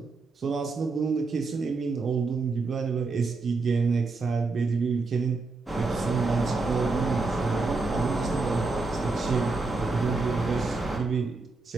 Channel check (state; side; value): quieter; left; 3.8 dB